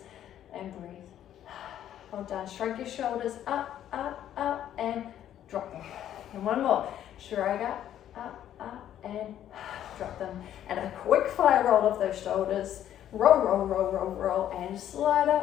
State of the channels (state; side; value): quieter; right; 11.1 dB